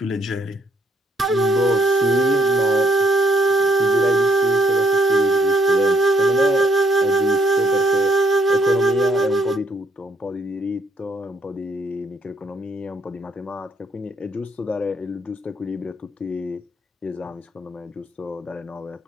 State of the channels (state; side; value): normal; both; correlation 0.70